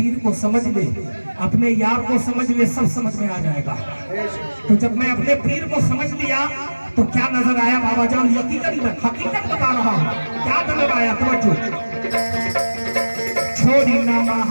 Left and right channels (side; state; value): both; inverted; correlation -1.00